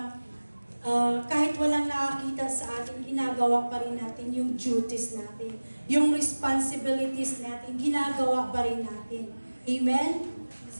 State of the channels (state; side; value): inverted; both; correlation -1.00